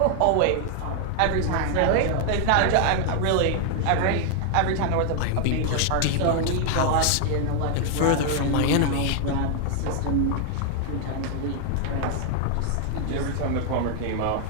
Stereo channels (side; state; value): both; different; correlation 0.00